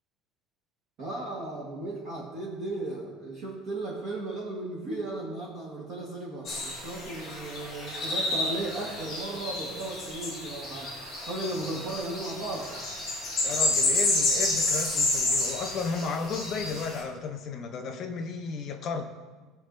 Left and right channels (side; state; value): both; normal; correlation 0.47